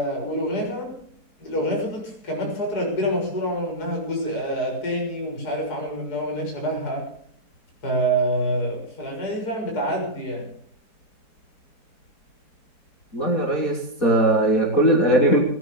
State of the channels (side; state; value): right; late; 4.2 ms